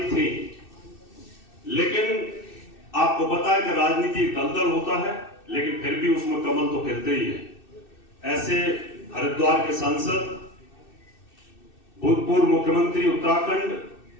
थी। लेकिन आपको पता है कि राजनीति दलदल होता है, लेकिन फिर भी उसमें कमल तो खिलते ही है। ऐसे हरिद्वार के सांसद, भूतपूर्व मुख्यमंत्री उत्तराखंड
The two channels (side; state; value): right; late; 2.6 ms